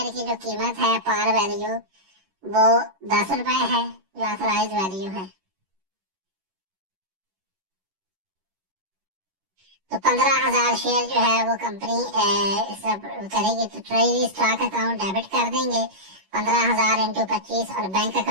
की जो कीमत है पार वैल्यू वो 10 रुपए है, जो ऑथराइज वैल्यू है। तो 15,000 शेयर जो है वो कंपनी सब करेगी, तो ट्रेजरी स्टॉक अकाउंट डेबिट कर देंगे 15,000 इंटू 25 और बैंक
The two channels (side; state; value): left; late; 11 ms